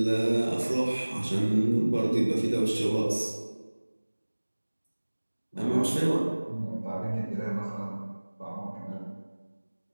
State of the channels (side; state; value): both; inverted; correlation -1.00